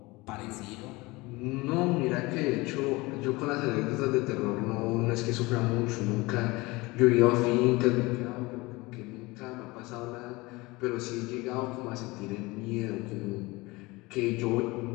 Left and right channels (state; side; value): quieter; right; 22.7 dB